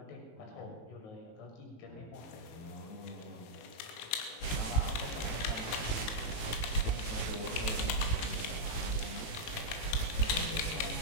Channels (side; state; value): right; late; 18 ms